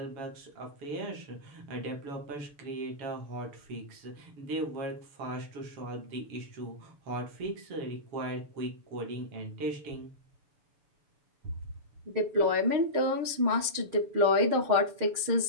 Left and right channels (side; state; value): left; late; 7.0 ms